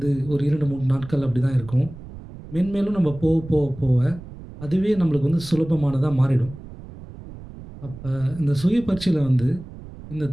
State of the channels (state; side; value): noise; right; rumble, 15 dB below the sound